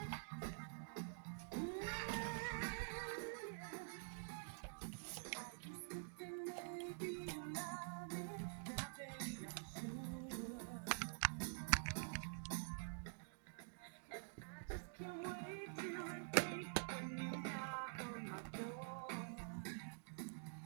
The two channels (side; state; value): left; silent; digital silence